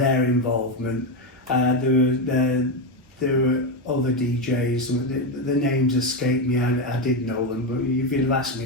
involvement. There were other DJs. The names escape me. I did know them, but if you'd have asked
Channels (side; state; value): both; normal; correlation 0.09